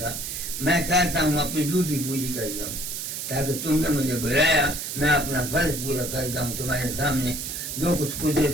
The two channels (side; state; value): right; noise; hiss, 5 dB below the sound